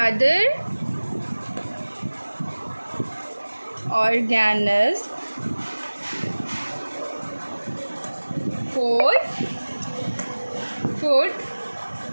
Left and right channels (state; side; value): inverted; both; correlation -1.00